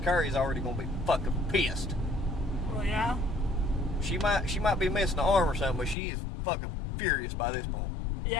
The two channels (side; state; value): right; drops out; at 6.0 s